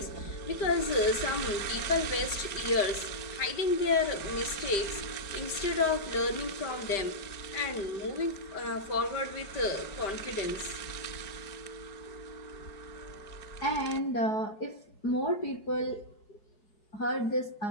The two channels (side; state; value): right; late; 5.1 ms